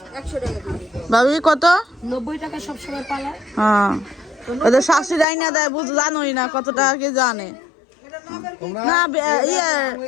100 টাকা ভাবি কত, 90 টাকা সবসময় পালা। হ্যাঁ ওদের শাশুড়ি আইনা দেয়, জানোই না কত টাকা কে জানে না। ইয়ে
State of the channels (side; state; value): right; drops out; at 5.2 s